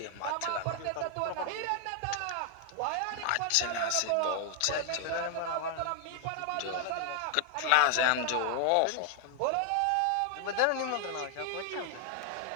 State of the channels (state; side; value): different; both; correlation 0.00